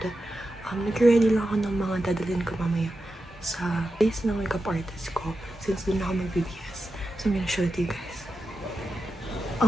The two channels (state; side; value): normal; both; correlation 0.90